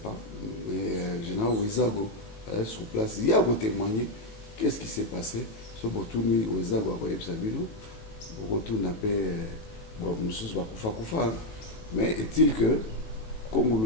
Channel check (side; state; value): right; late; 18 ms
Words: mais général Wezago est sur place. Il y a ko témoigner qu'est-ce qui s'est passé. Ce botuni Wezago a koyeb sabino. Beaucoup n'a pas mais est-il que